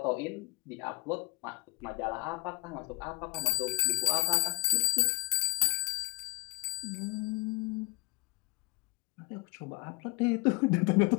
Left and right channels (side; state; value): right; quieter; 20.9 dB